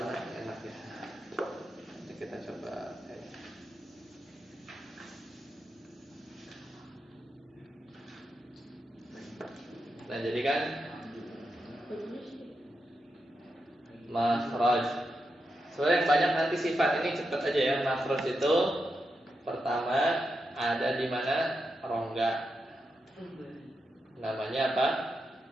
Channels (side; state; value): both; normal; correlation 0.87